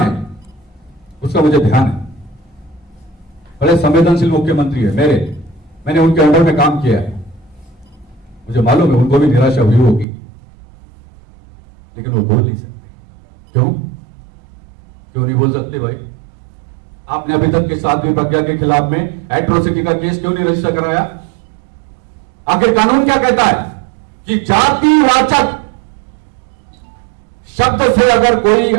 उसका मुझे ध्यान है। बड़े संवेदनशील मुख्यमंत्री है मैंने उनके अंडर में काम किया है, मुझे मालूम है उनको भी निराशा हुई होगी, लेकिन वो बोल नहीं सकते। क्यों नहीं बोल सकते भाई? आपने अभी तक के साध्वी प्रज्ञा के खिलाफ में एट्रोसिटी का केस क्यों नहीं रजिस्टर कराया? आखिर कानून क्या कहता है कि जातिवाचक शब्द से अगर कोई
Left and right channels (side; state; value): left; drops out; at 10.1 s